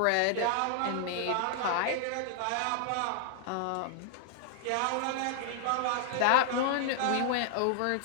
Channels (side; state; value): both; different; correlation -0.01